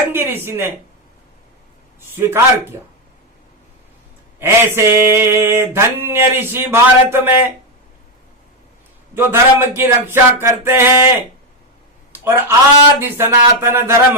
ऋषि ने स्वीकार किया। ऐसे धन्य ऋषि भारत में जो धर्म की रक्षा करते हैं और आदि सनातन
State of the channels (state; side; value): normal; both; correlation 0.06